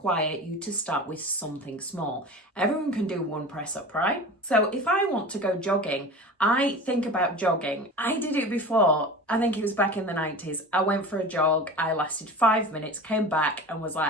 you to start with something small. Everyone can do one press up, right? So if I want to go jogging, I think about jogging. I did it before. I think it was back in the 90s. I went for a jog. I lasted 5 minutes, came back and was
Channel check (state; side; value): normal; both; correlation 0.34